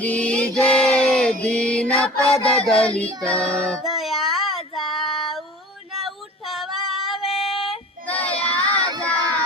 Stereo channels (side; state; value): both; normal; correlation 0.40